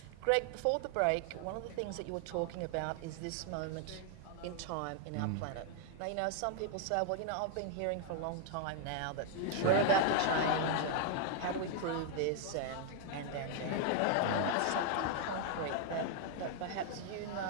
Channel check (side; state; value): both; different; correlation 0.00